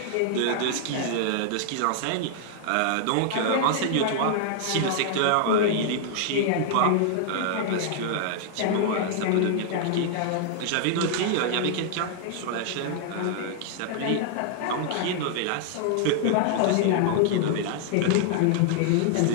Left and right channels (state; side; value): different; both; correlation -0.01